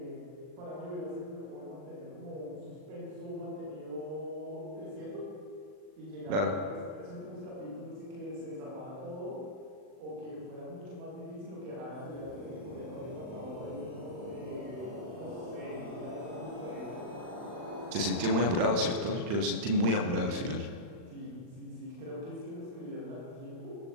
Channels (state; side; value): late; left; 39 ms